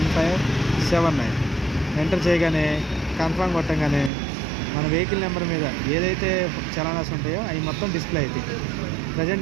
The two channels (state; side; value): drops out; left; at 4.1 s